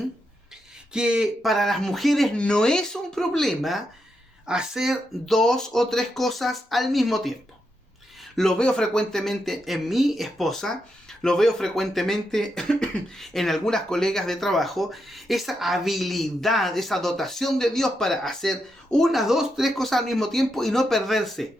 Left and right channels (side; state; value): both; normal; correlation 0.84